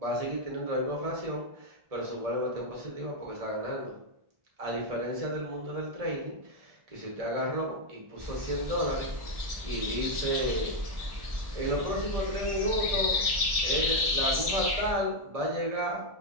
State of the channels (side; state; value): left; late; 1.7 ms